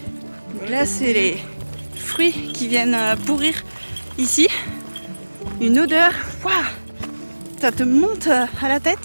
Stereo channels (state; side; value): inverted; both; correlation -1.00